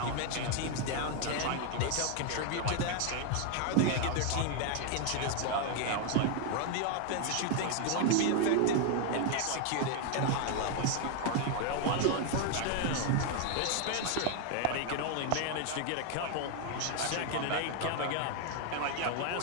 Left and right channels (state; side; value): different; both; correlation 0.00